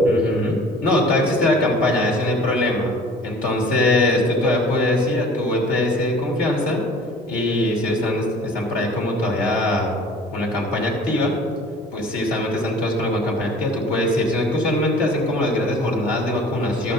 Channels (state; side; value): normal; both; correlation 0.47